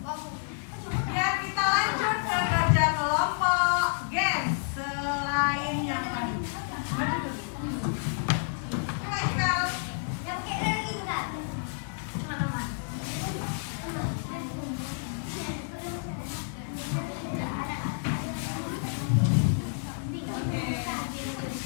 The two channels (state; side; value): silent; right; digital silence